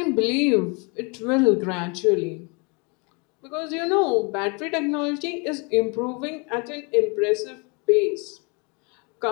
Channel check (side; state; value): right; quieter; 31.9 dB